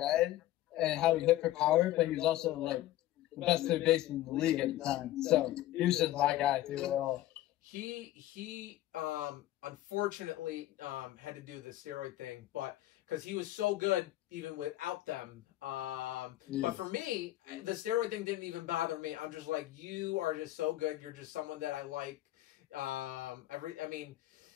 and how he hit for power, but he was also like the best third baseman in the league at the time. So he was just my guy through it all. He unfortunately had to do the steroid thing, but because he was so good even without them. But for me, the steroid thing didn't even bother me. I'm just like, you are just so good. You're just someone that I like.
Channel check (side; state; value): right; quieter; 14.8 dB